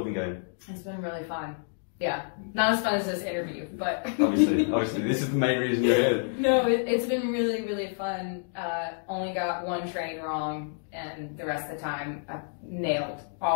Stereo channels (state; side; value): silent; right; digital silence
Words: been going? It's been really fun. Yeah, not as fun as this interview, but obviously, this is the main reason you're here. No, it's been really fun. Only got one train wrong, and the rest of the time I nailed